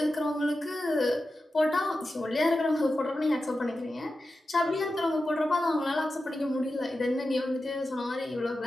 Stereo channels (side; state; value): both; normal; correlation 0.92